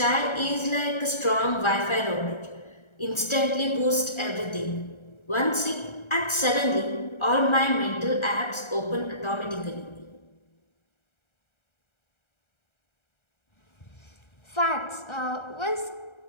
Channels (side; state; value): right; late; 1.3 ms